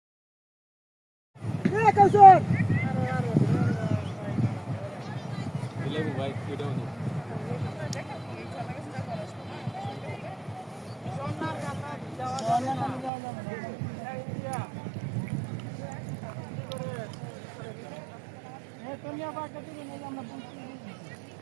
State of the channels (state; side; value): drops out; left; at 13.1 s